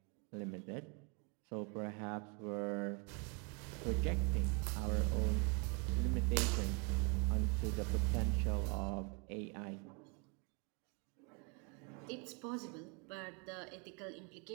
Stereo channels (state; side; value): quieter; left; 32.5 dB